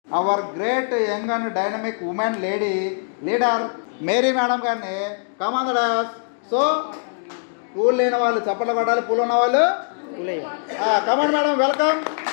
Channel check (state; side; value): silent; right; digital silence